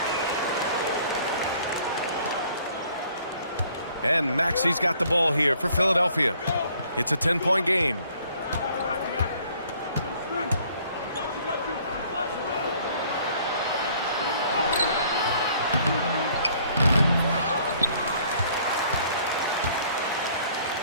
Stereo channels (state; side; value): inverted; both; correlation -0.59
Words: And Maxey's got the ball here for Philadelphia. It's a 10-point game.